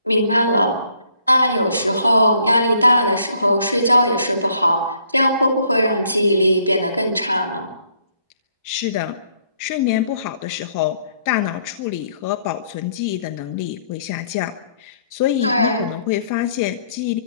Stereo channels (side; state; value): both; inverted; correlation -0.66